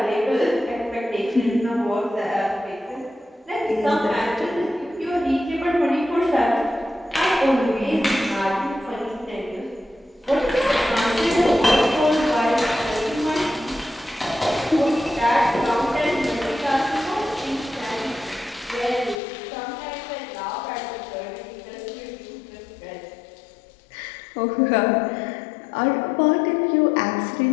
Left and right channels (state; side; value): drops out; right; at 19.2 s